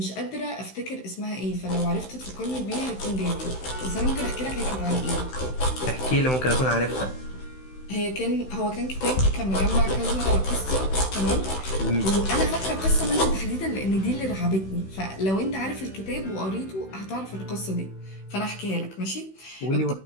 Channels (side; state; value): right; late; 16 ms